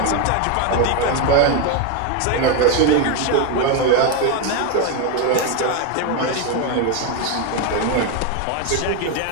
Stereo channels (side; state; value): both; different; correlation 0.02